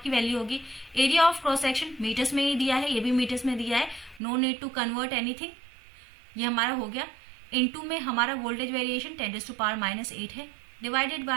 की वैल्यू होगी। Area of cross section metres में ही दिया है, ये भी मीटर्स में दिया है, no need to convert anything, ये हमारा हो गया। इनटू में हमारा वोल्टेज वेरिएशन 10⁻⁻8 है, डिवाइडेड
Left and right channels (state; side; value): drops out; left; at 4.2 s